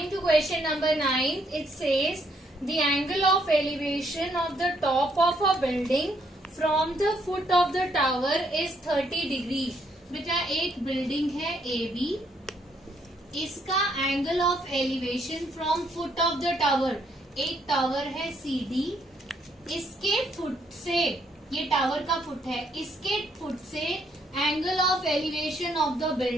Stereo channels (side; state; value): both; normal; correlation 0.71